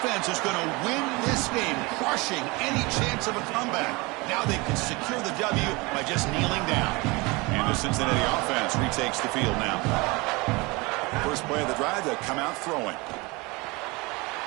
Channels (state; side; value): quieter; left; 25.1 dB